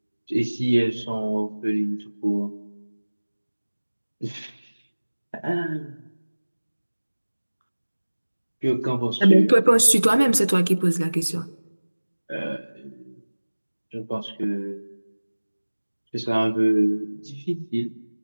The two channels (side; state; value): both; inverted; correlation -1.00